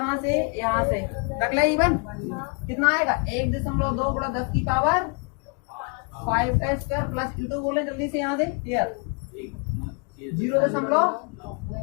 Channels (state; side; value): quieter; right; 35.6 dB